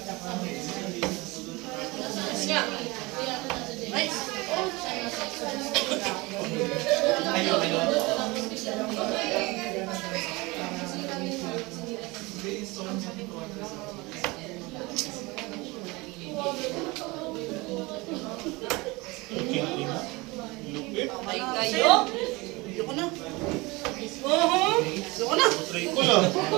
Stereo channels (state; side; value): quieter; left; 23.8 dB